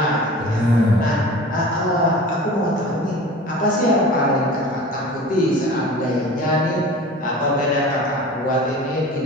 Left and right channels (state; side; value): normal; both; correlation 0.39